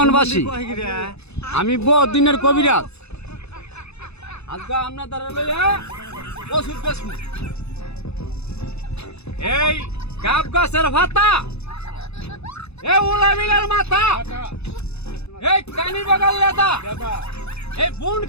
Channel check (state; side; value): late; right; 0.80 ms